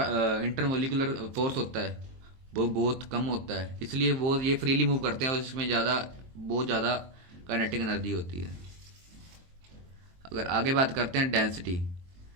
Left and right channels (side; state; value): left; late; 23 ms